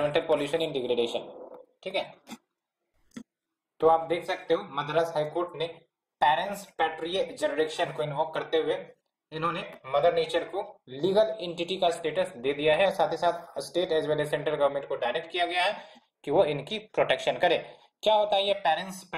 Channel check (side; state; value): both; identical; correlation 1.00